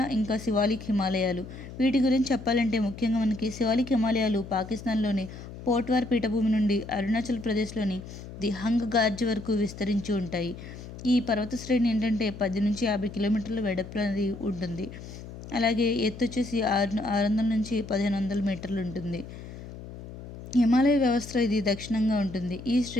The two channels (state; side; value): noise; left; hum, 13 dB below the sound